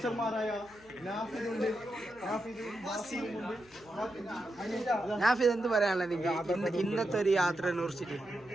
നാഫിദ് എന്ത് പറയാനുള്ളത് ഇന്നത്തെ ഒരു യാത്ര കുറിച്ചിട്ട്?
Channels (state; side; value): noise; left; hum, 26 dB below the sound